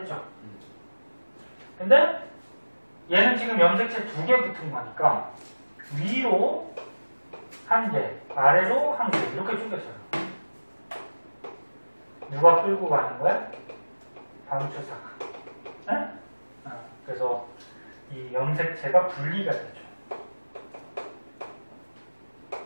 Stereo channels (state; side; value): inverted; both; correlation -1.00